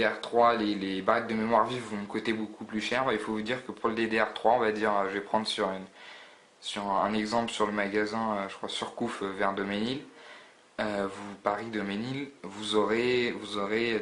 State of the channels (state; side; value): identical; both; correlation 1.00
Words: les barrettes de mémoire vive vont me coûter beaucoup plus cher. Il faut vous dire que pour le DDR3, on va dire, je vais prendre sur un exemple sur le magasin, je crois Surcouf vers Doménil. Paris Doménil, vous aurez